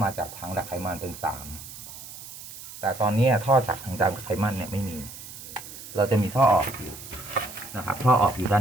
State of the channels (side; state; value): right; noise; hiss, 14 dB below the sound